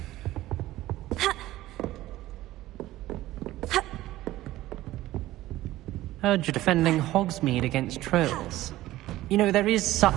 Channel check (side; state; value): left; quieter; 16.0 dB